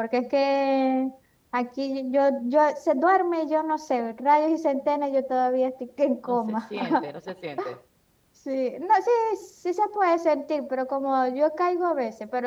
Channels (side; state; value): both; identical; correlation 1.00